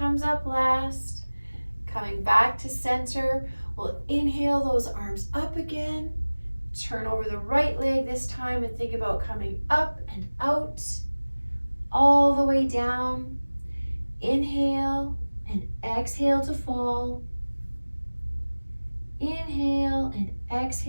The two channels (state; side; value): inverted; both; correlation -1.00